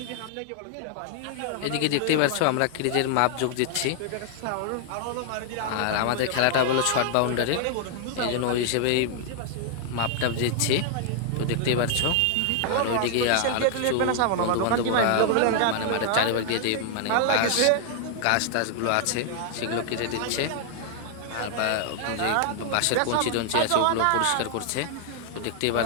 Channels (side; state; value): both; different; correlation 0.00